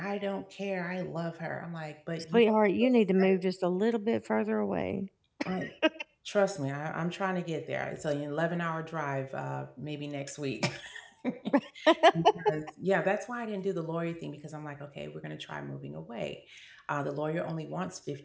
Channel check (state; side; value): identical; both; correlation 1.00